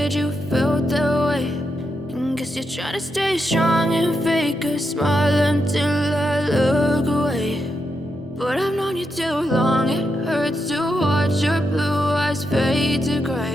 you felt that way. And guess you're trying to stay strong and fake a smile until I look away. But I've known you too long, it hurts to watch your blue eyes fade to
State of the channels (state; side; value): normal; both; correlation 0.84